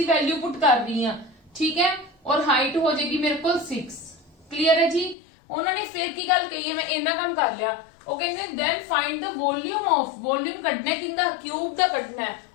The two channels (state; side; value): drops out; right; at 5.2 s